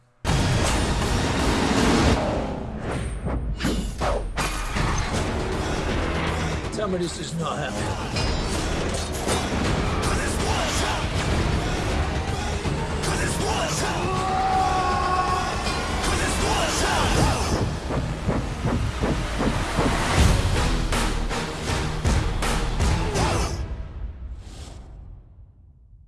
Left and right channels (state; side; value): identical; both; correlation 1.00